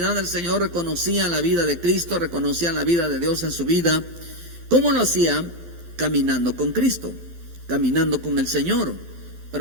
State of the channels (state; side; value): late; left; 12 ms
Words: del Señor, reconocía la vida de Cristo, reconocía la vida de Dios en su vida. ¿Cómo lo hacía? Caminando con Cristo, caminando con el Señor.